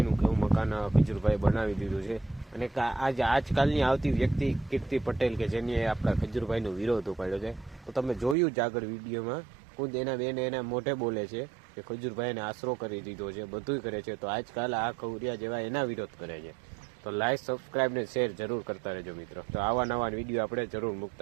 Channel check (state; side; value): drops out; left; at 8.3 s